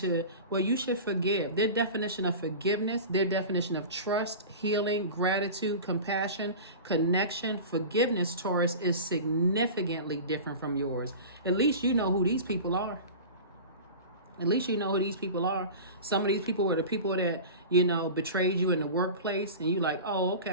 well, you should forgive. Their definition of forgiveness, their definition of trust, healing, gratitude, compassion, connection, forgiveness, Taurus, is significantly different from yours. At least you know who these people are. At least you know who these people are. Some of these people were the people that, betrayed you in the workplace, and you like, oh,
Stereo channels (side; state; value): both; inverted; correlation -0.33